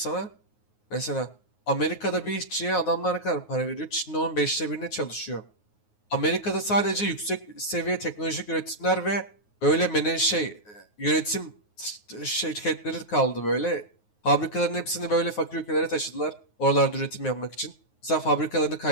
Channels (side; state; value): right; late; 9.5 ms